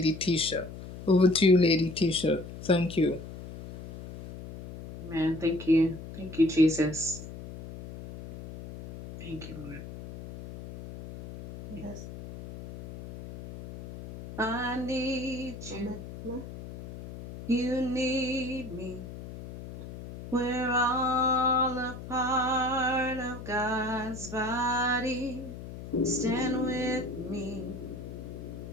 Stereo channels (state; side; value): noise; left; hum, 12 dB below the sound